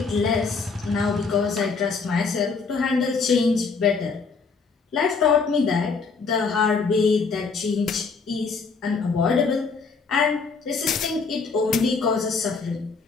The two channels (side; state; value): right; quieter; 4.8 dB